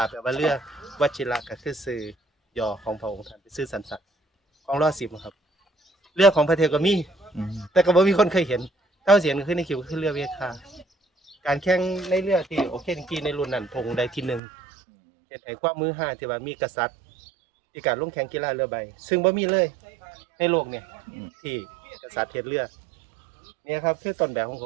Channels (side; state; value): left; drops out; at 14.4 s